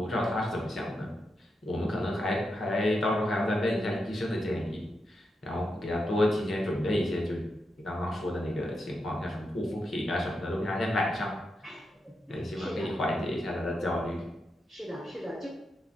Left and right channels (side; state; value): both; normal; correlation 0.86